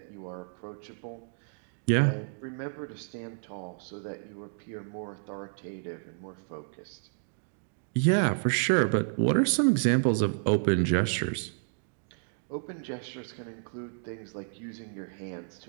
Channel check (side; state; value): left; silent; digital silence